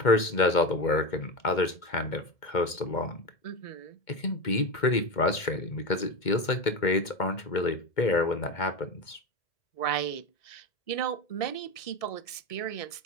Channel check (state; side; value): late; right; 2.2 ms